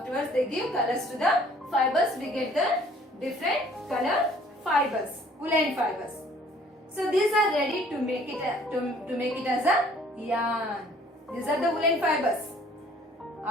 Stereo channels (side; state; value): both; normal; correlation 0.56